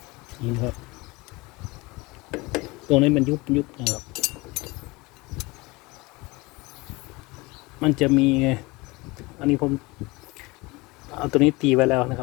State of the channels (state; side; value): quieter; right; 23.6 dB